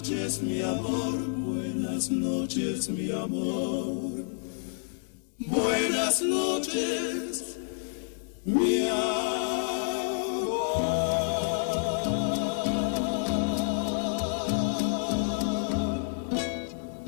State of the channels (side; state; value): right; silent; digital silence